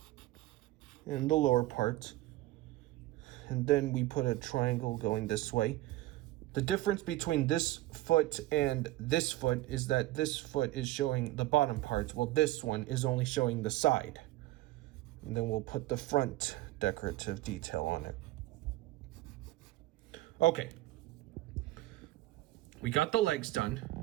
and the lower part. And then we put a triangle going this way. The difference between this foot and this foot is that this foot is showing the bottom part, while this one is only showing the side. And then we'll put the front decorative detail on it. Okay. We got the legs done.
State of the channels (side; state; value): left; quieter; 17.0 dB